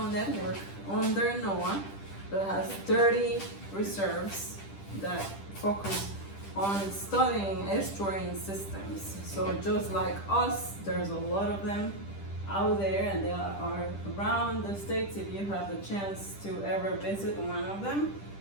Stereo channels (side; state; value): right; late; 10 ms